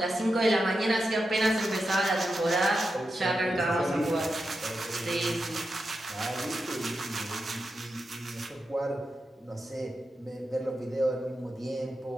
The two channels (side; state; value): both; normal; correlation 0.88